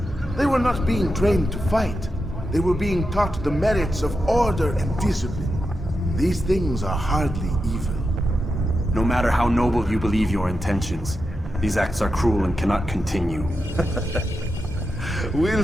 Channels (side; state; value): both; normal; correlation 0.88